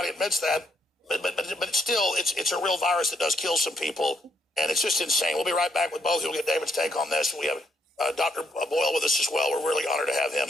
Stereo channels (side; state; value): both; normal; correlation 0.74